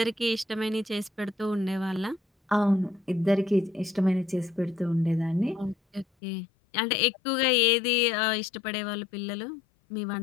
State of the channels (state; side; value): drops out; right; at 6.1 s